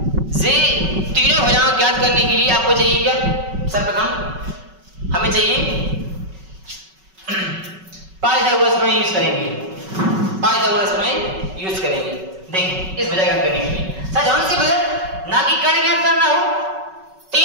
जे तीनों भुजाएं ज्ञात करने के लिए आपको चाहिए क्या? सर्वप्रथम हमें चाहिए पाइथागोरस में यूज करेंगे, पाइथागोरस में यूज करेंगे। देखिए इस भुजा ज्ञात करने के लिए कौन सी भुजा, ना कि कर्ण ज्ञात करना हो,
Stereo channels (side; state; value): left; late; 5.3 ms